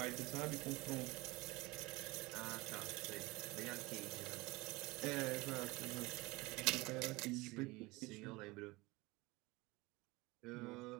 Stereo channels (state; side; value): quieter; left; 22.6 dB